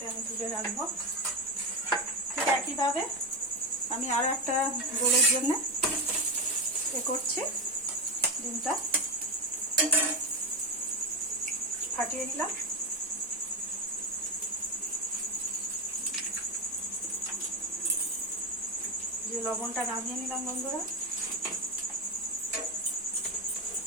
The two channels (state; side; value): normal; both; correlation 0.15